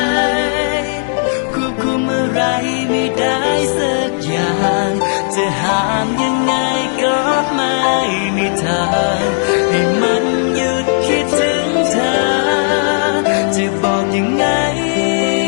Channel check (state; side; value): silent; right; digital silence